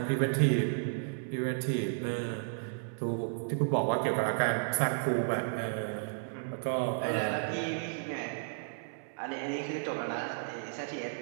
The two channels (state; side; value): silent; left; 56 dB below the other